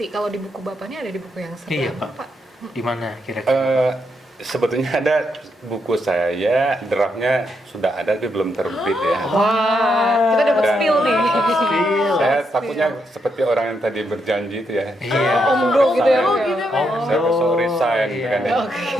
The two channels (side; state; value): both; normal; correlation 0.80